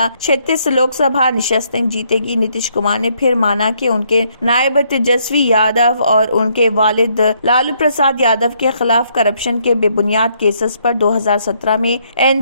لوک سبھا نشستیں جیتے گی۔ نتیش کمار نے پھر مانا کہ ان کے نائب تیجسوی یادو اور ان کے والد لالو پرساد یادو کے خلاف کرپشن کے بے بنیاد کیسز پر 2017 میں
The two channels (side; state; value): both; inverted; correlation -0.71